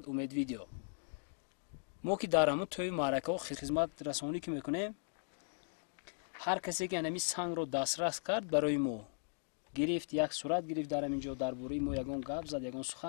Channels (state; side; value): silent; right; digital silence